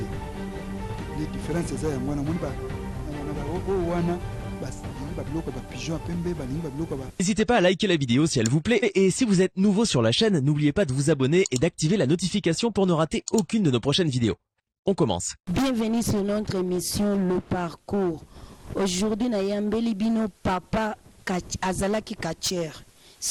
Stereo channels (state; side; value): identical; both; correlation 1.00